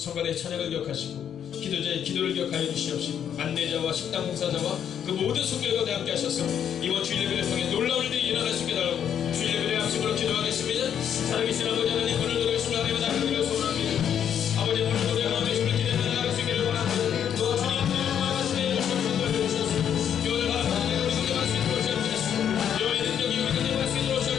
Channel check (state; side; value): quieter; right; 9.0 dB